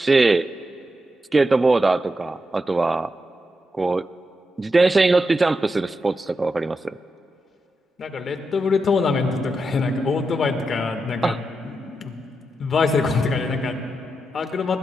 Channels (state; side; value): normal; both; correlation 0.87